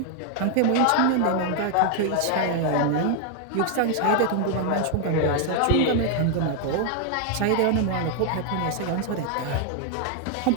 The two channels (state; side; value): different; both; correlation 0.00